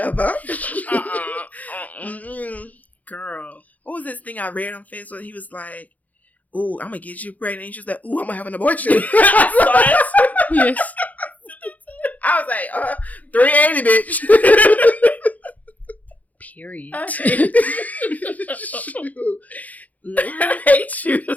fuck? Girl. What was this thing I read on Facebook? He was like, ooh, I'm going to get you pregnant. And she was like, ooh, I'm going to have an abortion. Yes. I was like, 380, bitch. Period. I hate you.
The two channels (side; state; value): right; late; 0.077 ms